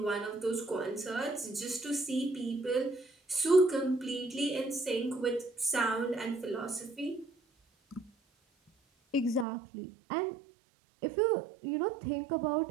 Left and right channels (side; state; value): left; drops out; at 9.5 s